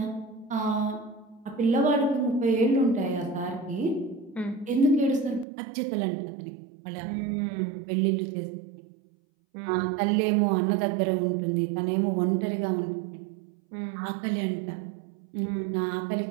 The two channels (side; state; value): left; drops out; at 5.5 s